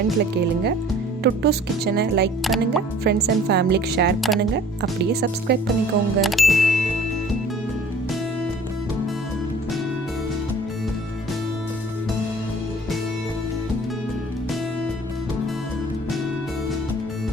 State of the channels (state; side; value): normal; both; correlation 0.50